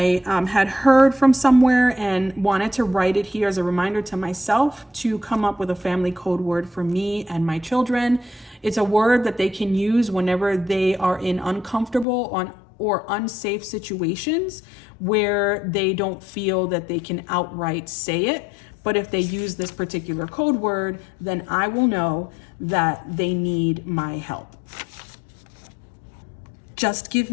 had heard from somewhere and wanted to write it here as a reminder to myself to come up with a family code word for me and my children. It's a word that they can use whenever they are in uncomfortable or unsafe situations where they don't feel that they can outright say it. But if they use this particular code word, then I will know that they need my help. Just give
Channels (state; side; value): drops out; right; at 12.1 s